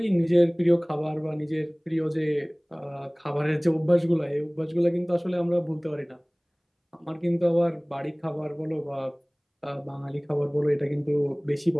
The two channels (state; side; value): identical; both; correlation 1.00